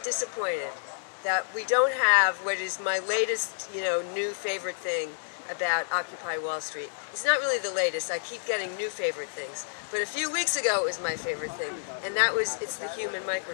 disappointed that we don't have what is my latest, new favorite thing about Occupy Wall Street. It's not really the latest. I keep getting new favorite things. But a few weeks ago it was my favorite thing, and that was it's the human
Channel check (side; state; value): right; silent; digital silence